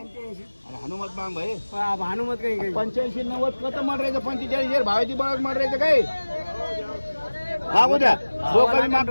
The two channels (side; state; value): both; inverted; correlation -1.00